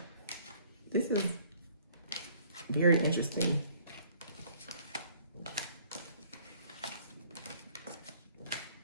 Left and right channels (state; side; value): inverted; both; correlation -0.58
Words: This is very interesting.